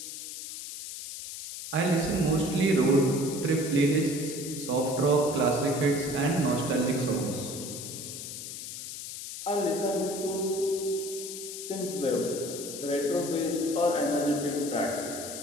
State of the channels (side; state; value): left; noise; hiss, 9 dB below the sound